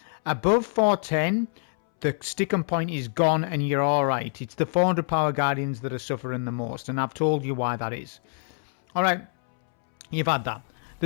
Above 410, the sticking point is gone and you're alright. It's the 400 power Guardians that are suffering the most, and I've told you why that is. Alright, you've had that.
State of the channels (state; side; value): silent; right; 61 dB below the other